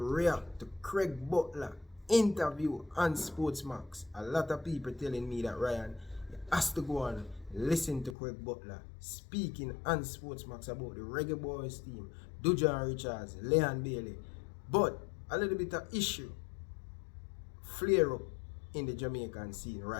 to Craig Butler interview on Sportsmax. A lot of people telling me that Ryan has to go and listen to Craig Butler speaking on Sportsmax about the Reggae Boyz team, Dujan Richards, Leon Bailey. But a little bit of issue flare up in the Jamaican scene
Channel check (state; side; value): drops out; right; at 8.2 s